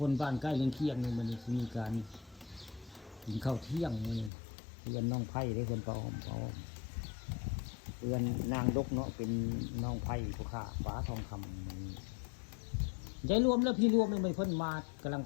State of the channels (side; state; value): right; drops out; at 4.3 s